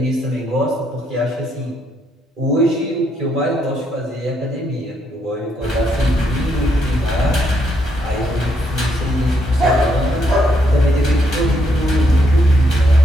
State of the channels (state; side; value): normal; both; correlation 0.75